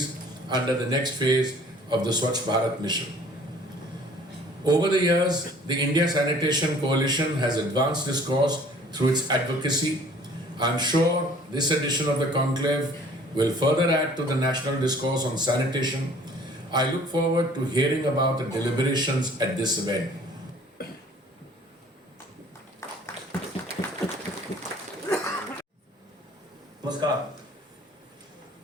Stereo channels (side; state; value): both; normal; correlation 0.53